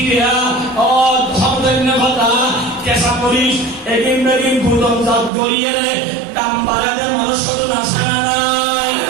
ও ধর্মভাতা কেঁচা মরিচ এদিন বেদিন গুদামজাত গড়িয়ে দাম বাড়াতে মানুষ শুধু আসে না।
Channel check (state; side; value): drops out; left; at 5.3 s